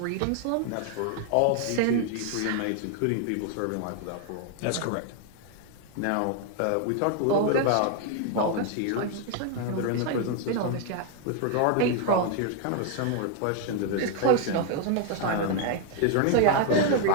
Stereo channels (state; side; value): different; both; correlation 0.00